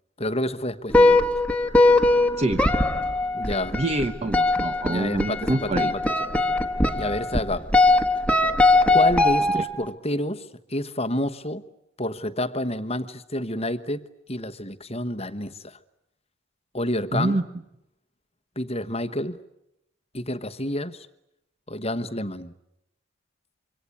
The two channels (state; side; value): normal; both; correlation 0.69